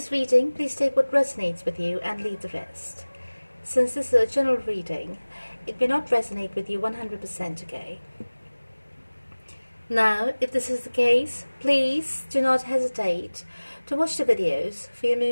reading, please take what resonates with you and leave the rest. Since this is a general reading, it may not resonate with you 100%, okay? Now, if this is the case, please do not hesitate to watch the videos for your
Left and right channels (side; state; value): both; inverted; correlation -1.00